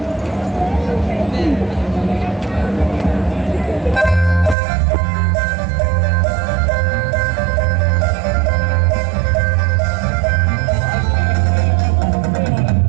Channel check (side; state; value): left; drops out; at 4.5 s